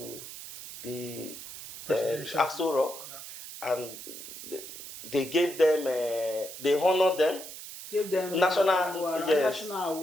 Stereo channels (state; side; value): noise; right; hiss, 12 dB below the sound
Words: the Aso Rock, and they gave them, they honored them. Give them national